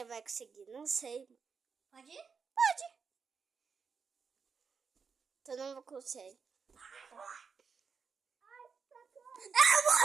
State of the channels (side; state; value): left; quieter; 5.7 dB